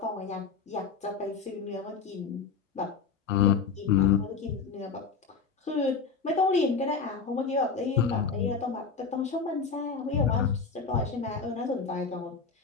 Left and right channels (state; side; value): quieter; right; 5.3 dB